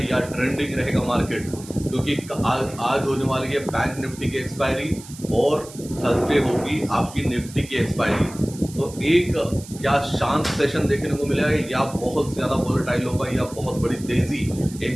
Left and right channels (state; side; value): noise; right; hiss, 17 dB below the sound